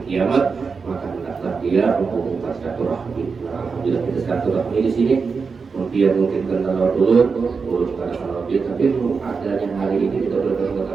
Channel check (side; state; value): left; quieter; 5.1 dB